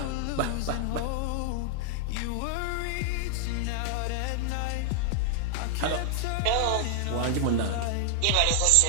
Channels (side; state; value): both; different; correlation 0.00